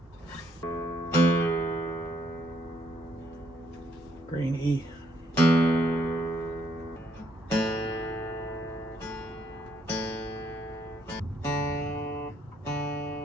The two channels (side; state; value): both; normal; correlation 0.71